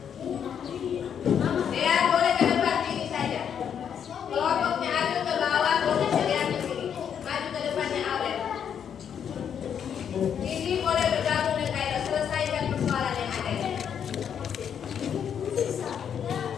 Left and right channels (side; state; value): right; quieter; 8.2 dB